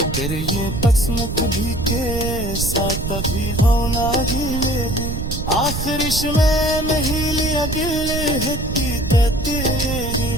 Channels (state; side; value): noise; right; rumble, 4 dB below the sound